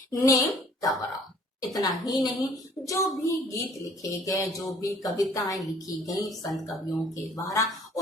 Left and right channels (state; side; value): normal; both; correlation 0.55